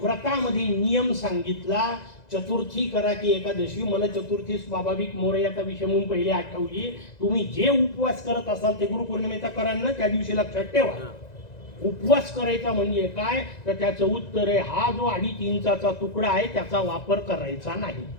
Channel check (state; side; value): late; right; 1.9 ms